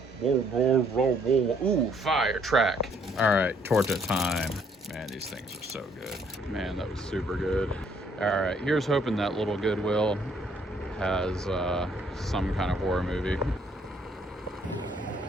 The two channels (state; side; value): normal; both; correlation 0.66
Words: Whoa, whoa, whoa, whoa. Ooh, fire track. All right, torta time. Man, these things are so good. Man, that was super good. All right, here's hoping that little Goodwill has some kind of horror movie.